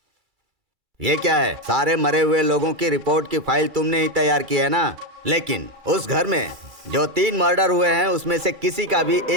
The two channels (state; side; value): late; left; 2.3 ms